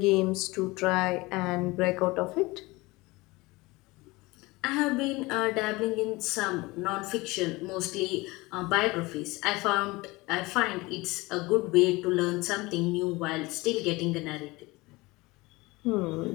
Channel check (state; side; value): quieter; right; 22.4 dB